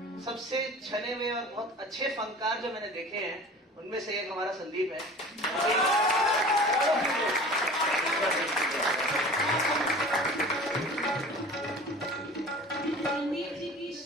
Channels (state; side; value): normal; both; correlation 0.41